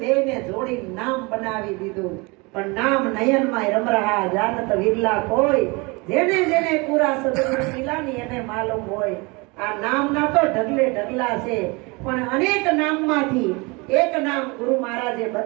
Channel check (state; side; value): quieter; left; 27.3 dB